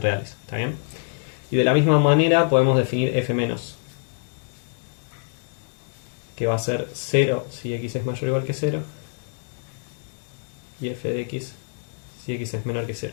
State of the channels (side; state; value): right; silent; digital silence